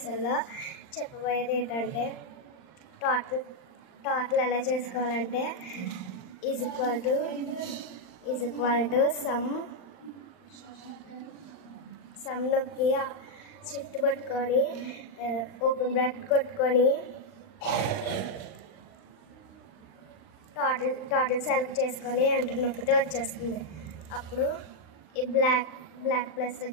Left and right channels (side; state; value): right; late; 39 ms